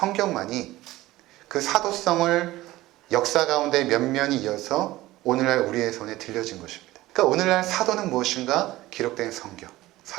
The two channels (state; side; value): quieter; left; 17.3 dB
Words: 그 사도성을 역사 가운데 면면이 이어서 오늘날 우리의 손에 들려진 것입니다. 그러니까 오늘날 사도는 무엇인가? 기록된 성경.